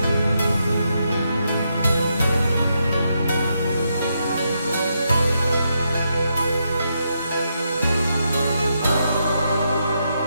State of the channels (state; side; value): inverted; both; correlation -0.81